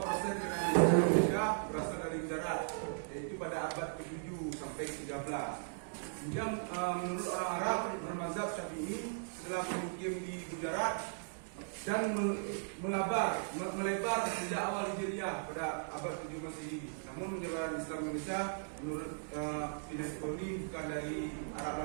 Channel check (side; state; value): left; silent; digital silence